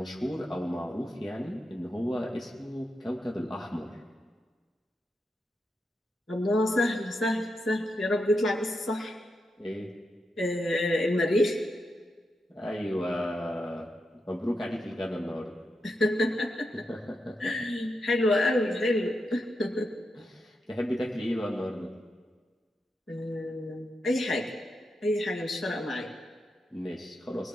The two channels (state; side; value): normal; both; correlation 0.86